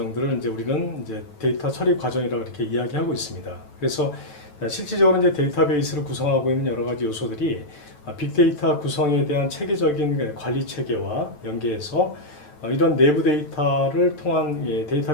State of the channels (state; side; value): late; right; 9.2 ms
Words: 이제 우리는 이제 데이터 처리 과정이라고 이렇게 이야기하고 있습니다. 그래서 실질적으로 이제 데이터베이스를 구성하고 있는 여러 가지 요소들이 빅데이터 구성에 대한 체계적인 관리 체계와 연계해서 이런 내부 데이터를 통한